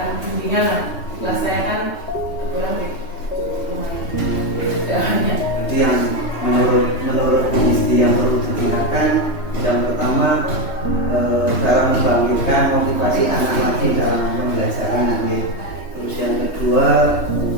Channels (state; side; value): late; right; 3.2 ms